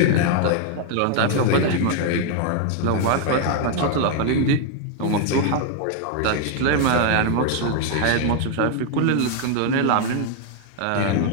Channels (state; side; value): different; both; correlation 0.00